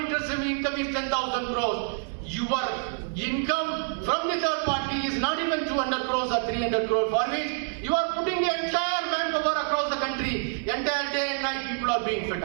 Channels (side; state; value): left; silent; 60 dB below the other